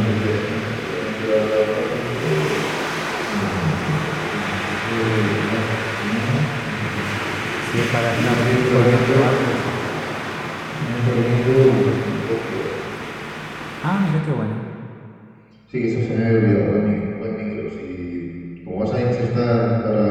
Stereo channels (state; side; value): identical; both; correlation 1.00